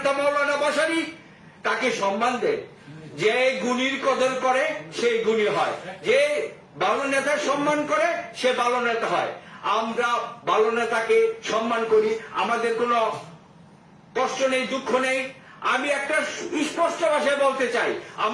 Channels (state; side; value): identical; both; correlation 1.00